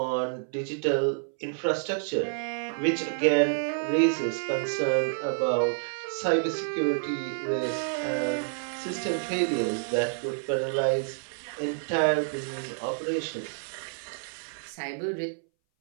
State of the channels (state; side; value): silent; left; 59 dB below the other